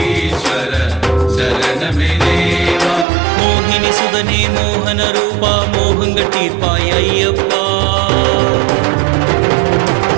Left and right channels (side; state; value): left; drops out; at 3.1 s